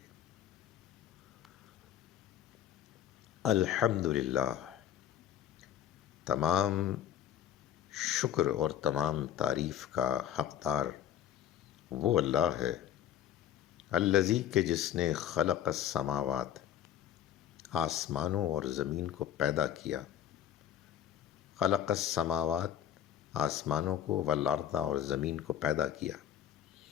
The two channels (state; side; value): quieter; right; 10.6 dB